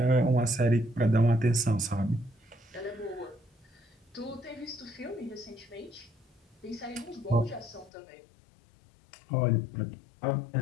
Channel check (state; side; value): drops out; right; at 7.9 s